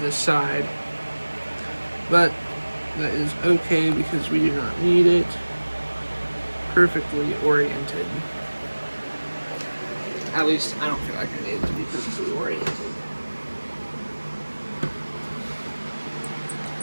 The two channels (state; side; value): inverted; both; correlation -1.00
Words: this side. But that is okay because we do not need it perfectly oriented. At least I don't feel like I need it to be perfectly oriented. I